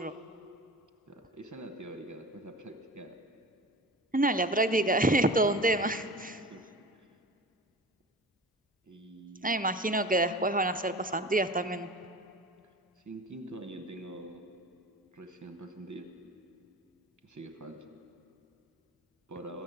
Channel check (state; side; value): normal; both; correlation 0.36